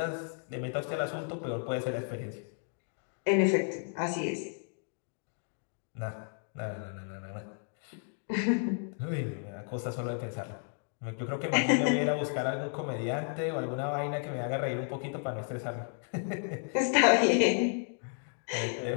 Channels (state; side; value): silent; right; 56 dB below the other